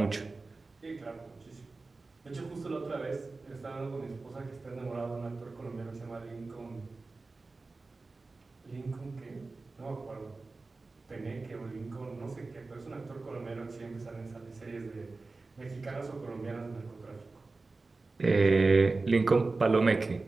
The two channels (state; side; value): quieter; left; 3.7 dB